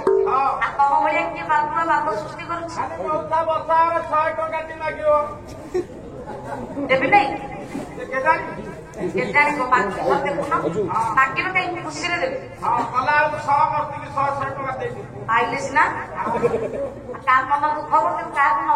ଆଉ ତମ ଭଳିଆ କିଏ ବାବୁର ବାପ ସୃଷ୍ଟି କରୁଛି ଦେବି ନାଇଁ କେଜାଣି ଦେଖୁନ ମାଗିବ କାହିଁକି ଖୁସିରେ ଦେବି ପାଇଲେ ସିନା ତା ମନ ଦୁଃଖ ହବ କିନ୍ତୁ କାହାକୁ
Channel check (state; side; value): identical; both; correlation 1.00